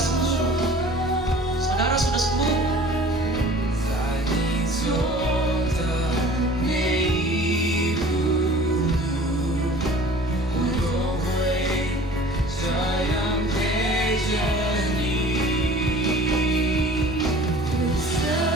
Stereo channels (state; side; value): normal; both; correlation 0.46